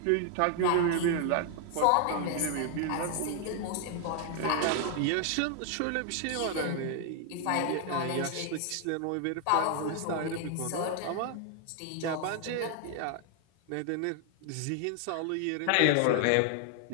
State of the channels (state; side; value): different; both; correlation 0.00